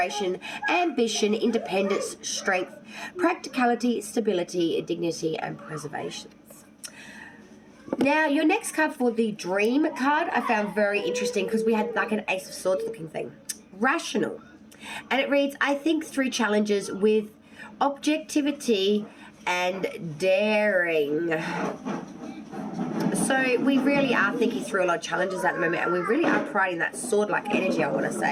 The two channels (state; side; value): identical; both; correlation 1.00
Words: ambition, independence, strength, practicality, stability, dignity, and preservation. Now, your next card for the dream card I found very interesting because we had like an Ace of Swords looking thing. Rational. And it reads, I think through challenges with objectivity and daring. So we really are thinking through a lot of challenges at the moment, and we really are providing that sword-like energy, I want to